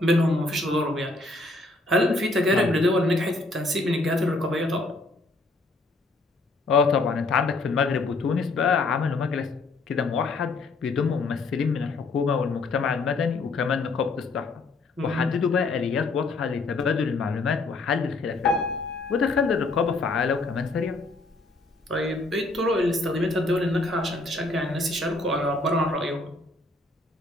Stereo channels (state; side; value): quieter; right; 3.2 dB